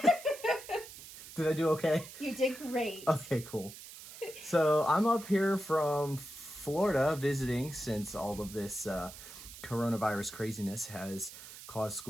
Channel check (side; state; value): right; noise; hiss, 15 dB below the sound